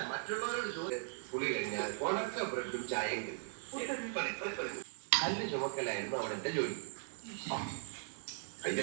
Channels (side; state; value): left; silent; digital silence